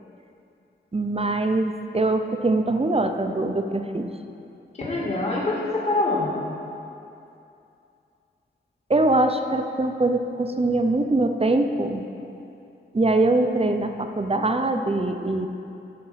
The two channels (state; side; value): normal; both; correlation 0.61